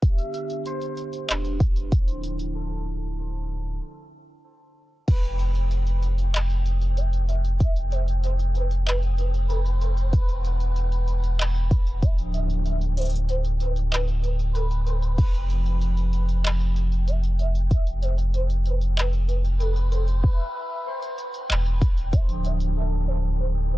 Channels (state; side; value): normal; both; correlation 0.96